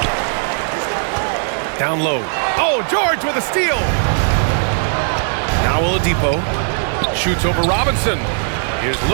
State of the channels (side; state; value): left; silent; digital silence